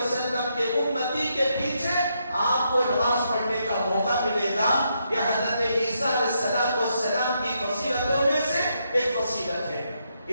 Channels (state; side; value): inverted; both; correlation -0.79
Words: کے امتی کے پیچھے آپ کو نماز پڑھنے کا موقع ملے گا. یہ حضرت عیسیٰ علیہ السلام کی فضیلتوں میں سے ایک فضیلت ہے.